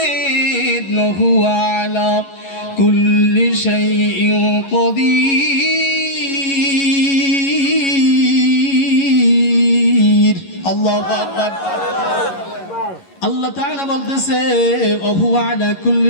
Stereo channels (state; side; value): late; right; 11 ms